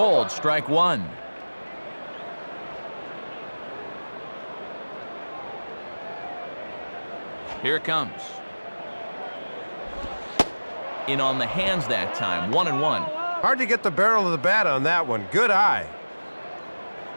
strike one. Here it comes. In on the hands that time, 1-1. Hard to get the barrel of the bat on that one. Good eye.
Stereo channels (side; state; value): both; inverted; correlation -1.00